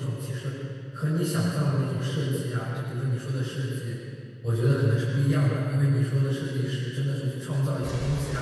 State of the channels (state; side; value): identical; both; correlation 1.00